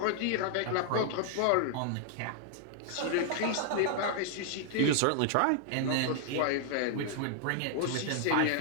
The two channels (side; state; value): both; different; correlation 0.00